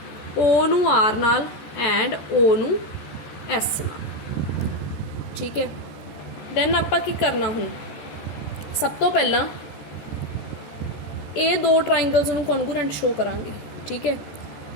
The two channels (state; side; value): late; right; 14 ms